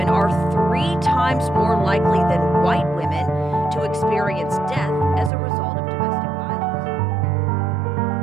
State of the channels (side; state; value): left; drops out; at 5.3 s